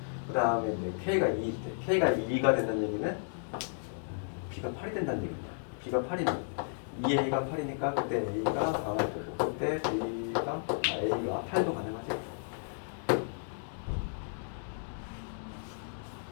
그 다음에 이제 K가 2일 때 K가 2가 된다는 얘기는 B가 8이 된다는 얘기입니다. B가 8이면 2A가 8이니까 그때 A가 4가 되고 그때 A가 8도 가능하지.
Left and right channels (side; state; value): right; silent; digital silence